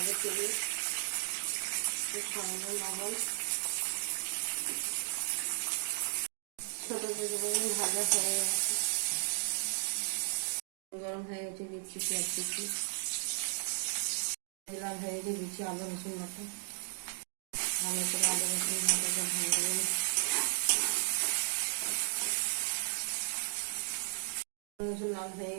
তেলে, সামান্য লবণ। ছোট তেঁতো বেগুন ভাজা হয়ে গেছে, গরম হয়ে গেছে, দিচ্ছি পেঁয়াজ কুচি, লাল হয়ে গেছে, দিচ্ছি আদা রসুন বাটা, ভালো করে আদা রসুন বাটাটা ভেজে নেব। রসুন লাল হয়ে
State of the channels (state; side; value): silent; left; digital silence